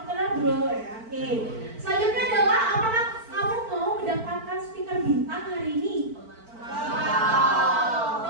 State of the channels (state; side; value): late; left; 4.5 ms